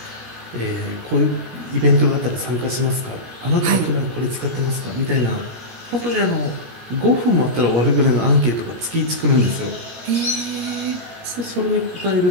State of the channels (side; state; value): left; late; 17 ms